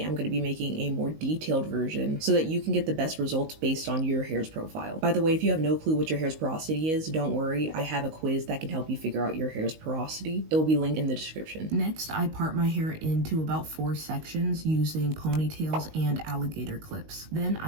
I'm going to be making a more detailed version so that you can get the best results based on your hair's profile. By the way, if you have no clue what your hair's porosity is, don't worry, I have a quiz that can help you figure out your hair's porosity. It will be linked in the description. Next, I part my hair into about 4 sections using ponytails and alligator clips. Then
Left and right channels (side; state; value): left; late; 19 ms